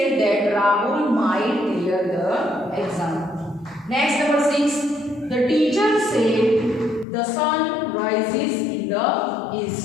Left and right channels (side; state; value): right; drops out; at 7.1 s